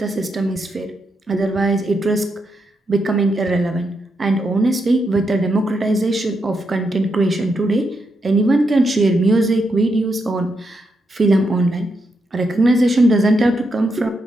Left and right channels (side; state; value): both; normal; correlation 0.82